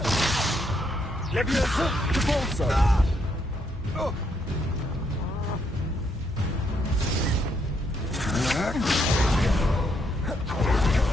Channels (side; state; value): both; normal; correlation 0.75